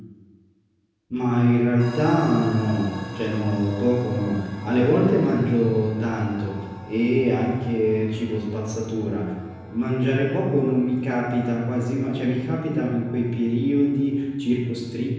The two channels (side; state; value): both; identical; correlation 1.00